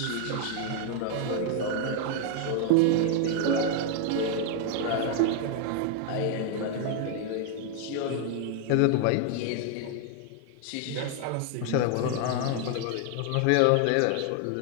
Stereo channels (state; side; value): different; both; correlation 0.00